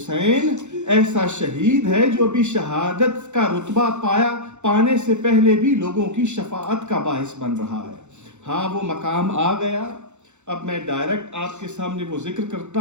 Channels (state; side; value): late; left; 0.83 ms